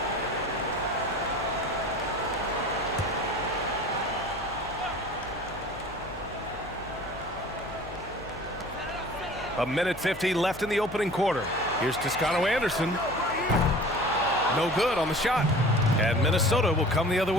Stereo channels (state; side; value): noise; left; hum, 16 dB below the sound